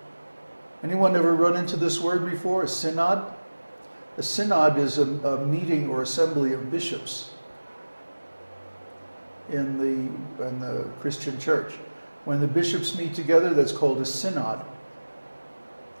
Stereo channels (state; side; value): inverted; both; correlation -1.00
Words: Anyone ever run into this word before, a synod? A synod is a meeting or assembly of bishops in the Christian church. When the bishops meet together, that's called a synod.